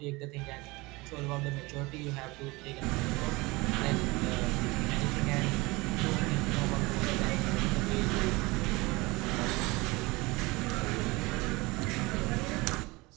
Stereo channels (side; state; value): left; quieter; 23.3 dB